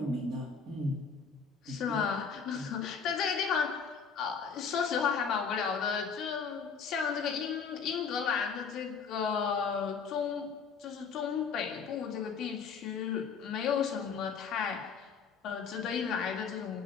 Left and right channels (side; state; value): right; quieter; 5.9 dB